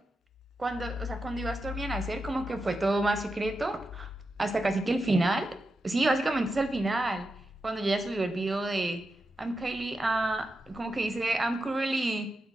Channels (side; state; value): both; normal; correlation 0.88